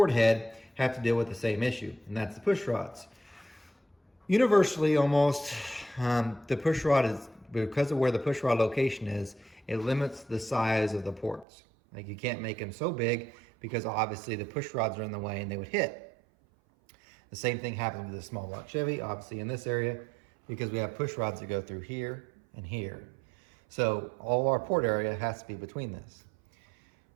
head, have to deal with the same issue, and that's the push rods. Universally, almost, the push rod is, because of where the push rod location is, it limits the size of the ports. Like, you can't make them so big because obviously the push rods are in the way and they would hit. The same thing happens with the small block Chevy, obviously in this area, because we have push rods that go through here and here. So all our port area has to be between this.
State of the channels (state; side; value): drops out; left; at 11.5 s